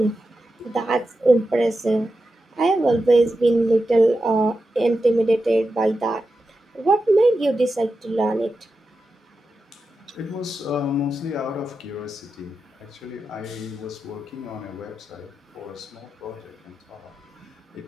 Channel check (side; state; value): both; normal; correlation 0.90